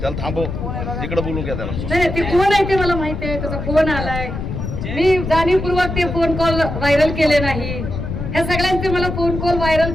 त्याला थांबव, इकडे बोलू घ्या त्याला. नाही, ते कोण आहे ते मला माहिती आहे. त्याचा फोन आलाय. मी जाणीवपूर्वक ते फोन कॉल व्हायरल केले नाही. ह्या सगळ्यांचे मला फोन कॉल व्हायरल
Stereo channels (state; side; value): noise; left; rumble, 5 dB below the sound